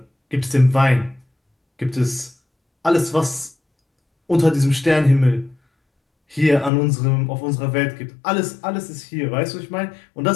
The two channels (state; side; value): drops out; right; at 6.7 s